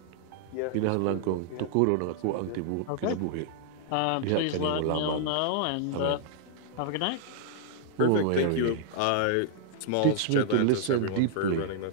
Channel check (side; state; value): both; different; correlation -0.01